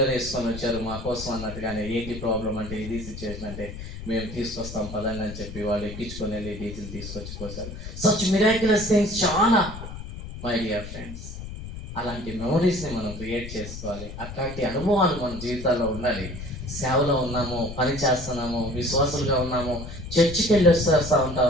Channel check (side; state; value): left; noise; rumble, 10 dB below the sound